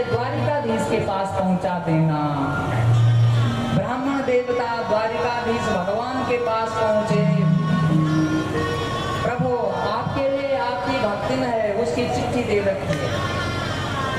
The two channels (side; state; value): both; identical; correlation 1.00